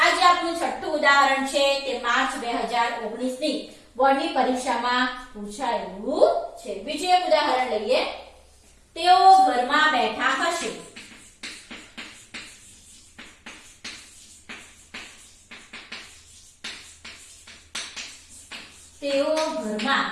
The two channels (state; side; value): identical; both; correlation 1.00